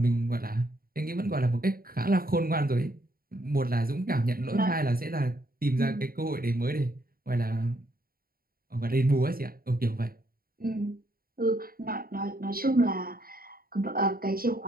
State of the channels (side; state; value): left; late; 0.43 ms